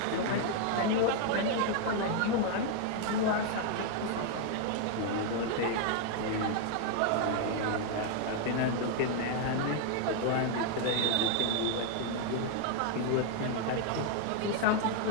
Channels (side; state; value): both; different; correlation 0.00